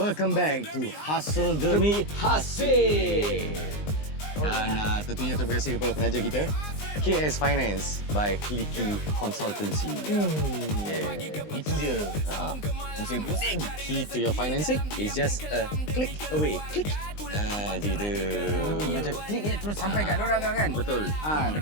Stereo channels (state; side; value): late; right; 20 ms